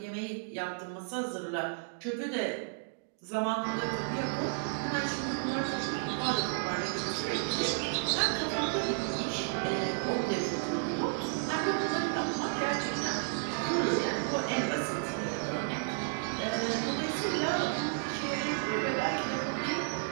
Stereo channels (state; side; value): silent; left; digital silence